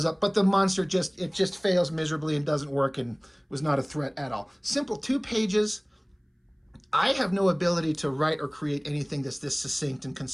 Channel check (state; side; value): identical; both; correlation 1.00